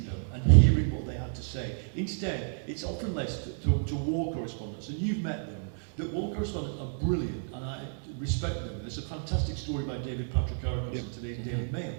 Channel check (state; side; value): silent; left; digital silence